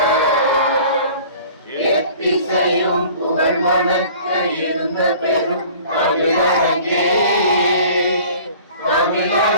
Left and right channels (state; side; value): inverted; both; correlation -0.47